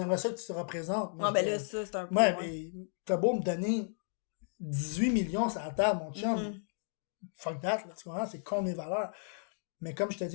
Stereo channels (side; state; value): right; silent; digital silence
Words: ça que tu te représentes. Moi, Ah, je ben dis, là, ça, c'est un peu... ouais, ouais. mais t'as beau me donner 18 millions sur la table, mon chum. Mhm. Fuck that, là, tu comprends? C'est con mes valeurs. Mais comme je te